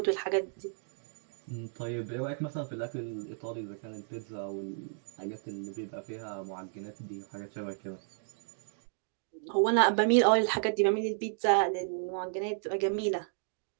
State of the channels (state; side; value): silent; left; digital silence